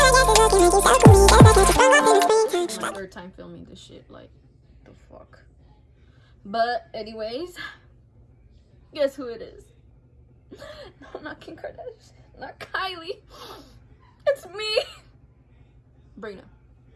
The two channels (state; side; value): identical; both; correlation 1.00